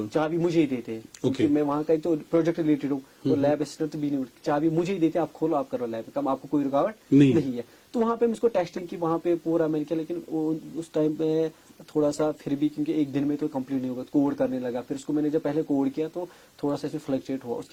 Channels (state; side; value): identical; both; correlation 1.00